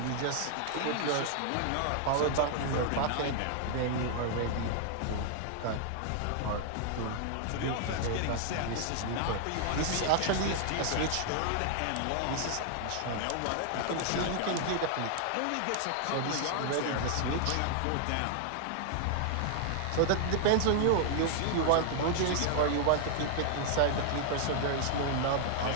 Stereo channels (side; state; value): both; different; correlation 0.00